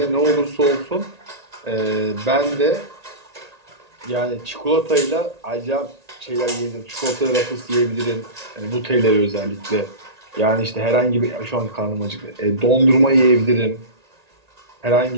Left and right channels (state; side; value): late; left; 1.8 ms